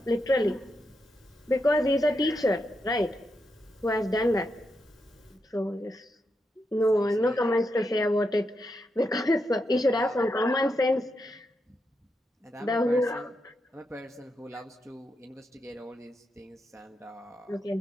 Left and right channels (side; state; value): both; normal; correlation 0.84